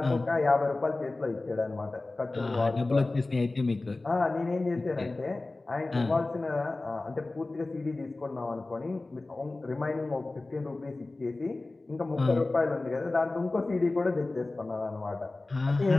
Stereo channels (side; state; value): right; quieter; 3.1 dB